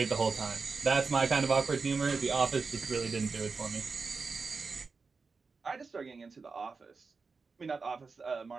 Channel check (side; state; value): left; quieter; 4.6 dB